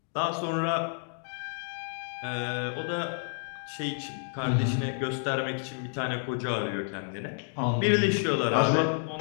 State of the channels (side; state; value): right; silent; digital silence